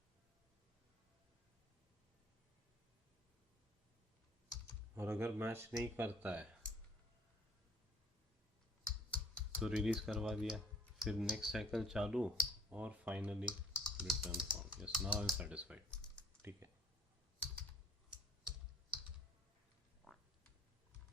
और अगर मैच नहीं करता है तो रिलीज करवा दिया, फिर नेक्स्ट साइकिल चालू और finally return found, yes now I am satisfied. ठीक है,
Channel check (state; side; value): normal; both; correlation 0.56